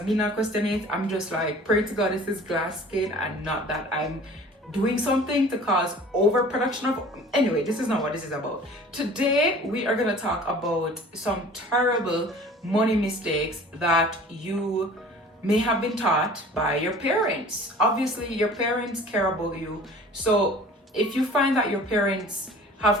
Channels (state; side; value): normal; both; correlation 0.46